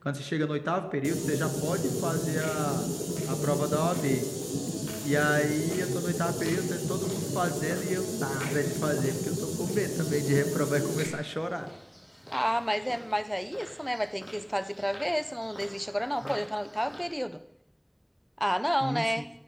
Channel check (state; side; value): identical; both; correlation 1.00